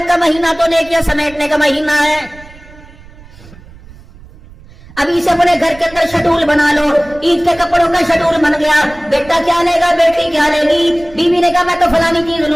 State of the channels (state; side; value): noise; right; rumble, 21 dB below the sound